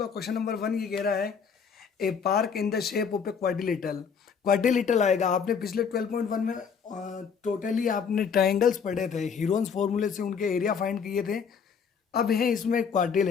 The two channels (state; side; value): quieter; right; 6.5 dB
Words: क्वेश्चन नंबर 1 ये कह रहा है a park in the shape of a quadrilateral. Quadrilateral आएगा। आपने पिछले 12.1 में टोटली आपने ट्राइंगल्स पढ़े थे, हीरोन्स फॉर्मूले से उनके एरिया फाइंड किए थे। अब है इसमें